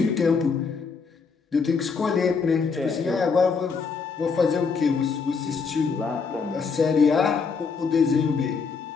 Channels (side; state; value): right; quieter; 5.2 dB